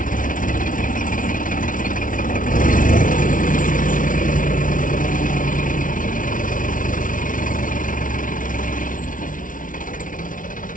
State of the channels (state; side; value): late; right; 0.38 ms